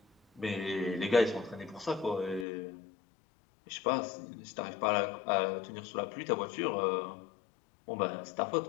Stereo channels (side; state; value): right; drops out; at 2.5 s